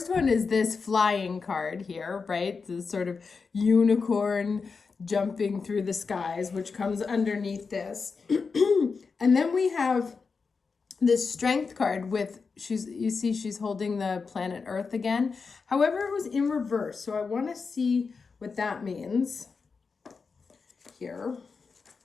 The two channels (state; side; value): quieter; right; 4.9 dB